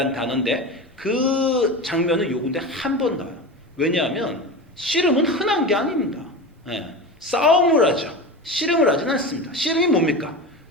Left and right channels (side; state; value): both; normal; correlation 0.26